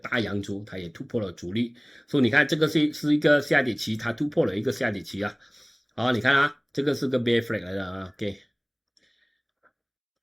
阳烛，它也突破了阻力，所以你看这个是一个下跌期，它突破了一个下跌期你看这个是个 bear flag 来的OK，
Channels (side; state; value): both; identical; correlation 1.00